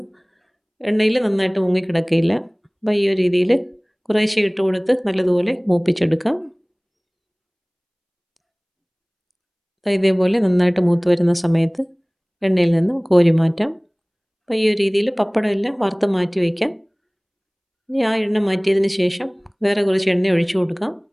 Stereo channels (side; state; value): both; identical; correlation 1.00